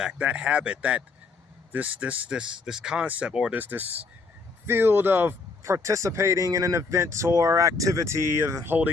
that habit, that this concept, or this field of participating in an event or activity of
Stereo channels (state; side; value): quieter; right; 4.2 dB